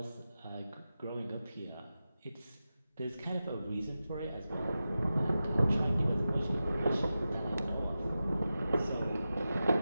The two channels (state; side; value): inverted; both; correlation -0.93